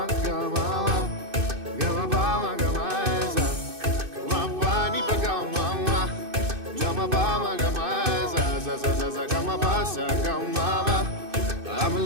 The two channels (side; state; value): left; late; 2.6 ms